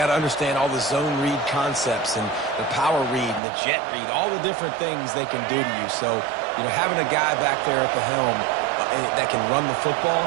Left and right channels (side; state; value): left; drops out; at 3.4 s